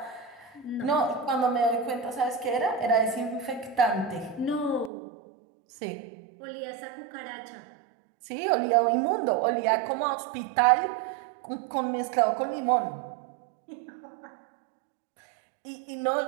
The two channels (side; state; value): left; drops out; at 4.9 s